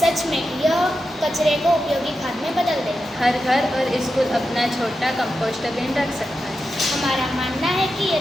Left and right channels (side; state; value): both; normal; correlation 0.89